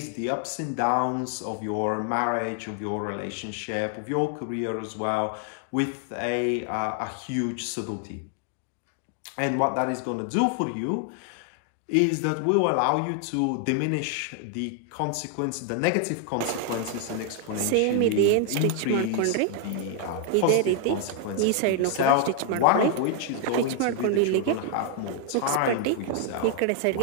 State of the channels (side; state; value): both; different; correlation 0.00